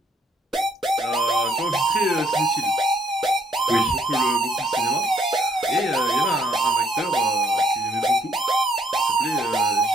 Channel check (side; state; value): both; normal; correlation 0.67